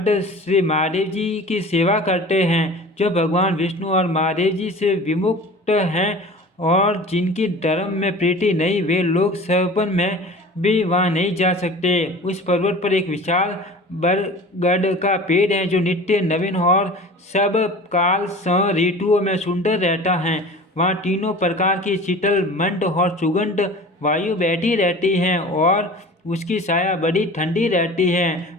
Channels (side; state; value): both; normal; correlation 0.40